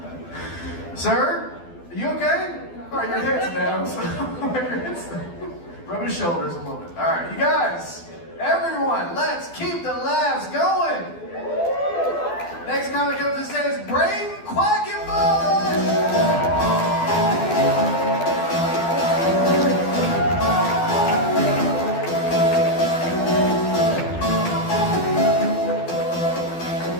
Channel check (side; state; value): right; late; 12 ms